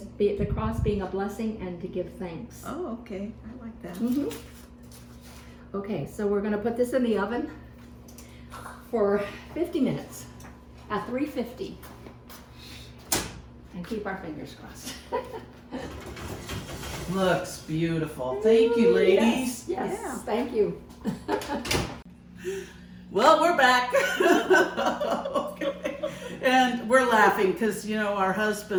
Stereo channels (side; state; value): both; identical; correlation 1.00